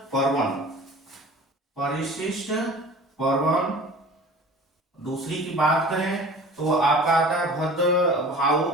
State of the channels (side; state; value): both; normal; correlation 0.42